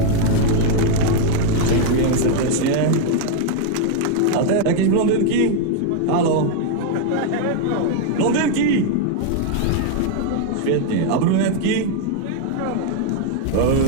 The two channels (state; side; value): different; both; correlation 0.00